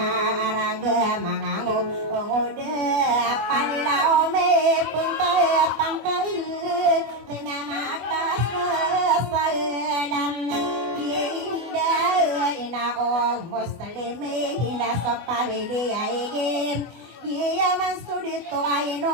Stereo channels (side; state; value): left; late; 24 ms